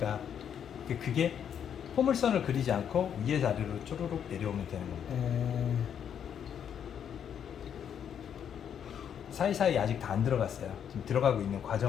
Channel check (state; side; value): quieter; right; 8.5 dB